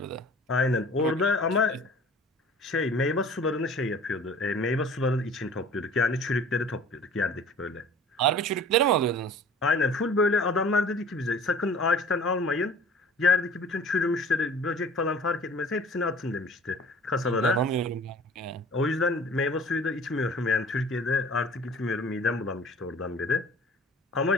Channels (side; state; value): both; normal; correlation 0.46